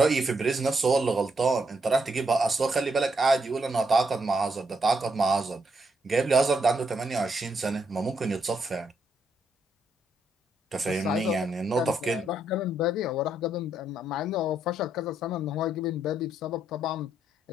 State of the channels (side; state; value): both; normal; correlation 0.77